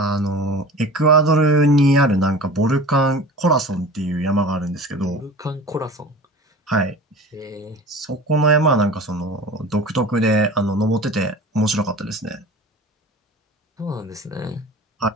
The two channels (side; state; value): both; normal; correlation 0.38